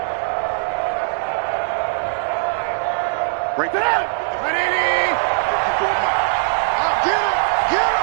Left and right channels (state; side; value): silent; left; digital silence